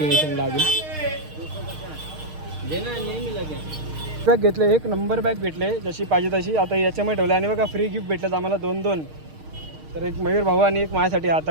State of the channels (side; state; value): left; late; 6.5 ms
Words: अजून बॅग घेतले, 1 नंबर बॅग भेटले जशी पाहिजे तशी. आता याच्यामध्ये ठेवले आणि बघा फ्री गिफ्ट भेटलं आम्हाला 2-2. तर एक मयूर भाऊ आणि एक माझ्यासाठी